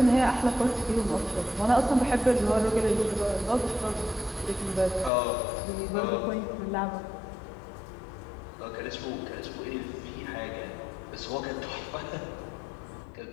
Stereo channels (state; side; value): drops out; right; at 5.1 s